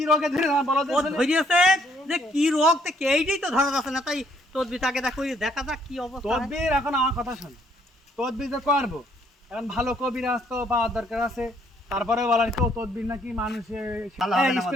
রোগে ধরে না বলো? ও ধরিয়েছে যে কি রোগ তো কেইটাই তো ধরা যাচ্ছে না। তাই তদবিটাকে দেখো দেখা যাক কি অবস্থা হয়। তদবির এখন আমার কথা শোন, তদবির তো করবো। এখন ভালো কবিরাজ তো পাওয়ার দরকার আছে। তারপরে বলার কেউ তদবির নাকি মানুষে ভালো হবে না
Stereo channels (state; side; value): normal; both; correlation 0.67